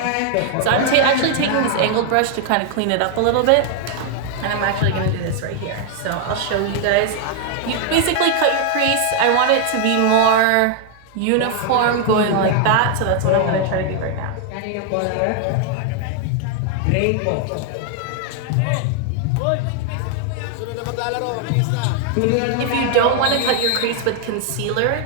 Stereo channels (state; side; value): different; both; correlation 0.00